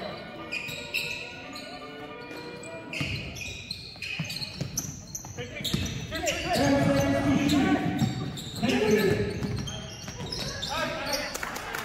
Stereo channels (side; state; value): both; identical; correlation 1.00